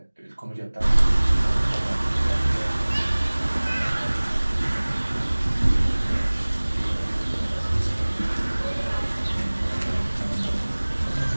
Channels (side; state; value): both; inverted; correlation -1.00